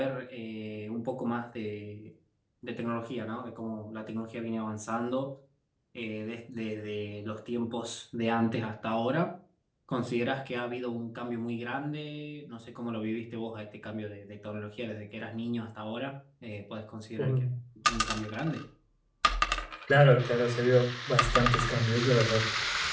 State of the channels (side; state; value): both; identical; correlation 1.00